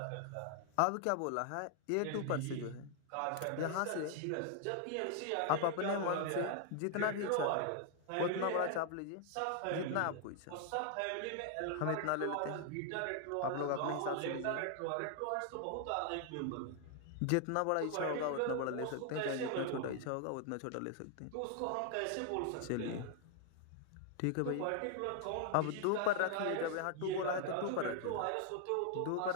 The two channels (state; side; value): different; both; correlation 0.00